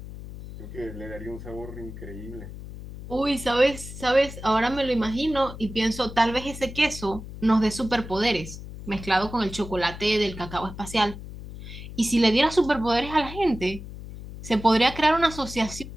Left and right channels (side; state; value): left; noise; hum, 12 dB below the sound